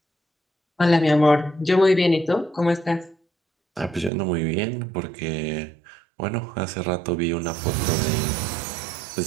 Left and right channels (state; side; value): drops out; left; at 4.1 s